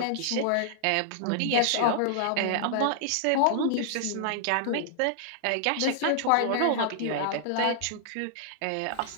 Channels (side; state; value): both; different; correlation -0.01